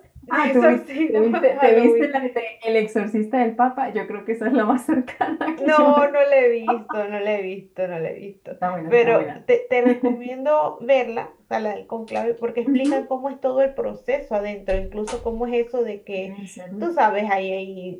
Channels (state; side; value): identical; both; correlation 1.00